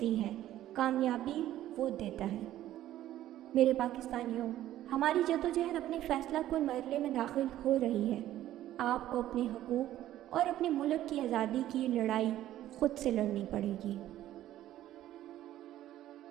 دی ہے، کامیابی وہ دیتا ہے۔ میرے پاکستانیوں، ہماری جدوجہد اپنے فیصلہ کن مرحلے میں داخل ہو رہی ہے۔ آپ کو اپنے حقوق اور اپنے ملک کی آزادی کی لڑائی خود سے لڑنی پڑے گی۔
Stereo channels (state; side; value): quieter; left; 13.3 dB